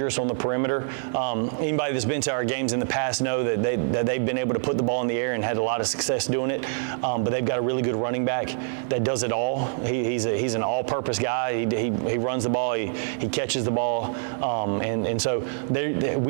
on the perimeter. Anybody that's been to our games in the past know that they've been able to put the ball in the air and had a lot of success doing it. But they've got a really good running back that does it all. He's an all-purpose guy. He runs the ball. He catches the ball, and so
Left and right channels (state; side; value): silent; left; digital silence